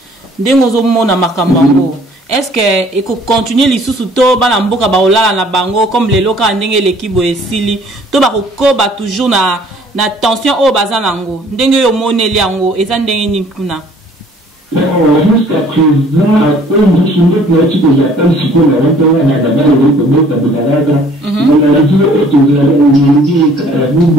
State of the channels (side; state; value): both; normal; correlation 0.56